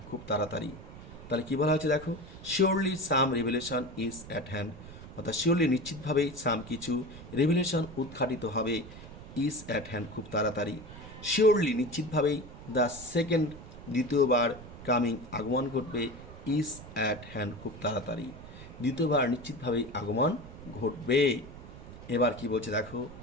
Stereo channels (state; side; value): noise; right; rumble, 15 dB below the sound